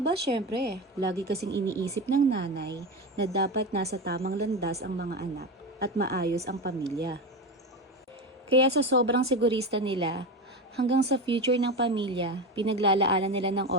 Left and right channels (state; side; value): normal; both; correlation 0.20